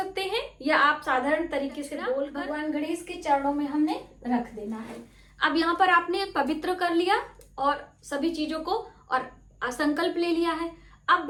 हैं, या आप साधारण तरीके से बोल भगवान गणेश के चरणों में हमने रख देना है। अब यहाँ पर आपने पवित्र कर लिया और सभी चीजों को, और संकल्प ले लिया है। अब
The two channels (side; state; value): both; identical; correlation 1.00